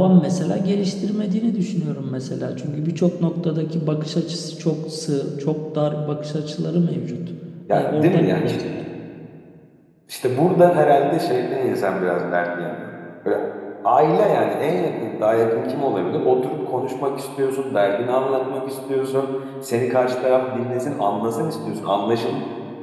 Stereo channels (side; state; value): both; identical; correlation 1.00